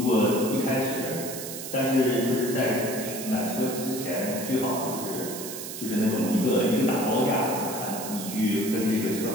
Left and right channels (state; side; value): noise; right; hiss, 8 dB below the sound